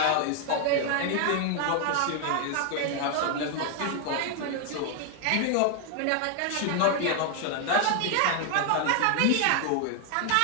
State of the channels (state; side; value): different; both; correlation 0.00